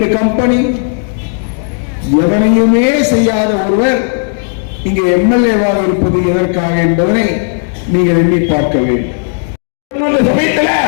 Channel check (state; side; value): silent; right; 67 dB below the other